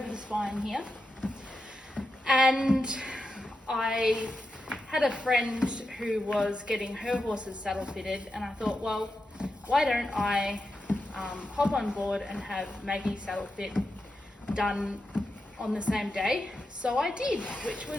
the spine here, and I had a friend who was getting her horse's saddle fitted, and I thought, well, why don't I hop on board and have Maggie's saddle fit done on the same day. So I did, which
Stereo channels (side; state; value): both; normal; correlation 0.88